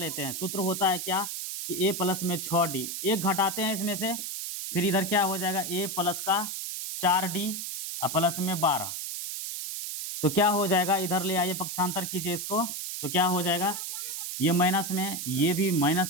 हैं। सूत्र होता है क्या कि ए प्लस में 6d, एक घटाते हैं इसमें से, फिर इधर क्या हो जाएगा, ए प्लस का 4d और प्लस में 12। तो क्या हो जाएगा, इधर ले आइए, पक्षांतर कीजिए इसको, तो क्या हो जाएगा, ये माइनस में, ये भी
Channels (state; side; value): noise; right; hiss, 5 dB below the sound